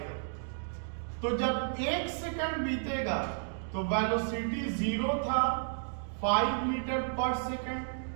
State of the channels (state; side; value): silent; left; digital silence